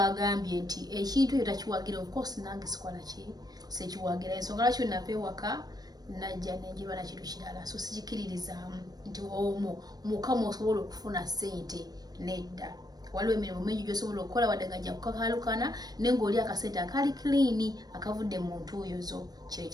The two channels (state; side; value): late; left; 0.19 ms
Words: nti ekintu ekyo takiwagira of course nange sikola ki sekiwagira ensonga lwaki napewaka najja nenjiba na kintu kirala so sikiririzaamu nti mukama osobola okufuna ssente nedda waliwo emirimu mingi gy'osobola okukola wadde ngajja kukakalukana naye ng'oli akasente akali clean akavudde mu ntuuyo